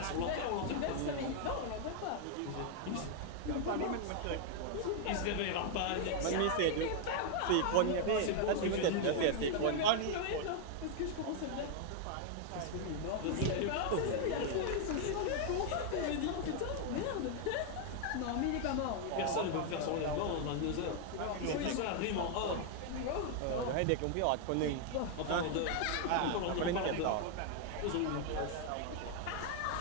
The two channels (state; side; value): different; both; correlation 0.00